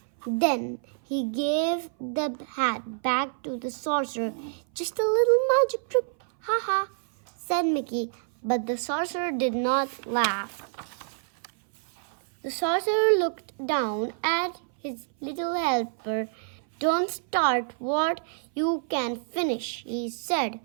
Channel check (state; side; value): silent; left; 58 dB below the other